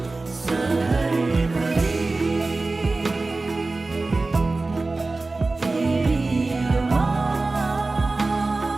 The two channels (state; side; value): quieter; left; 3.4 dB